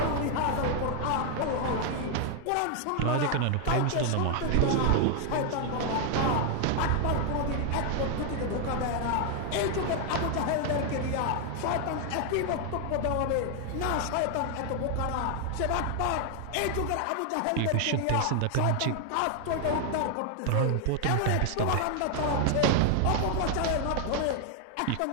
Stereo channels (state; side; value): different; both; correlation 0.00